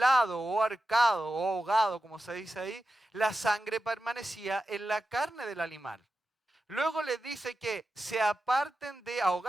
o ahorcado o ahogado, como se dice ahí, la sangre permanecía en la carne del animal. Luego les dice que se aparten de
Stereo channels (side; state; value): both; normal; correlation 0.92